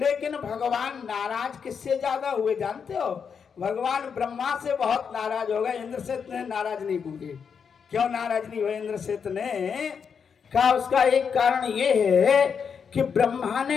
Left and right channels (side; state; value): right; quieter; 6.5 dB